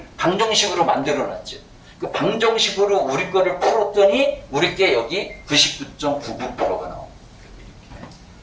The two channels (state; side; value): identical; both; correlation 1.00